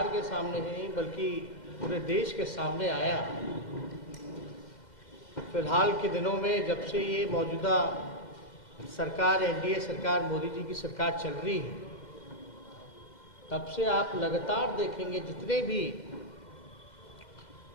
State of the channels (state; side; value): late; right; 2.1 ms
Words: के सामने नहीं बल्कि पूरे देश के सामने आया। फिलहाल के दिनों में जब से ये मौजूदा सरकार, एनडीए सरकार, मोदी जी की सरकार चल रही है, तब से आप लगातार देखेंगे जितने भी